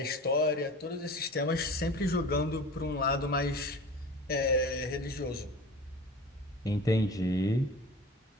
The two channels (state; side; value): normal; both; correlation 0.37